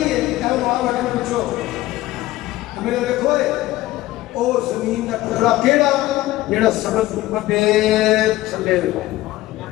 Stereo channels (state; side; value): quieter; right; 16.8 dB